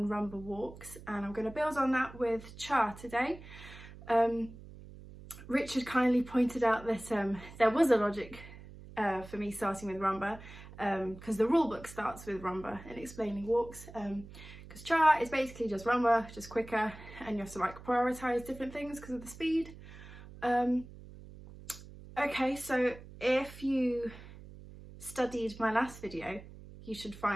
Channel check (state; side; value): noise; right; hum, 16 dB below the sound